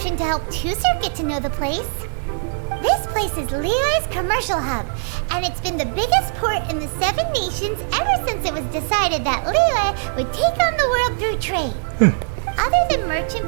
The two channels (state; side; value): silent; left; digital silence